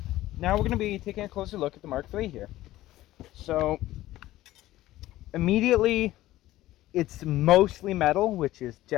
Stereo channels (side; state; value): right; quieter; 15.7 dB